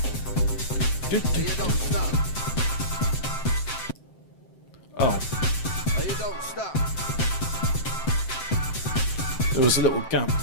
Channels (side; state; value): right; late; 7.7 ms